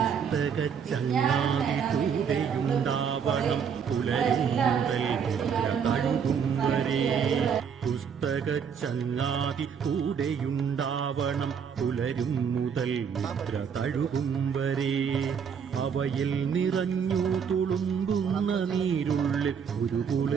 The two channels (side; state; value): left; quieter; 7.0 dB